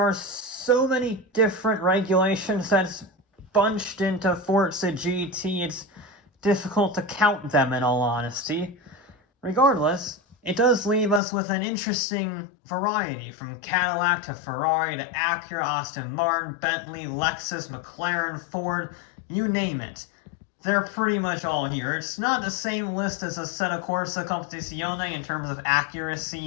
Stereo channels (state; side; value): drops out; right; at 11.2 s